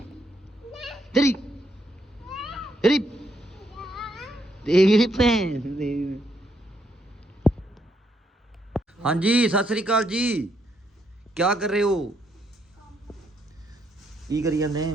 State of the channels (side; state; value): both; normal; correlation 0.75